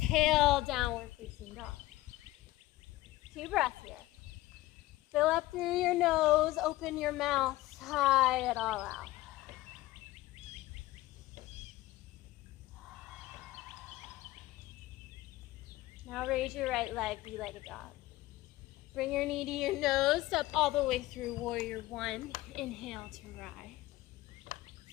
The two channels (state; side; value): quieter; right; 17.4 dB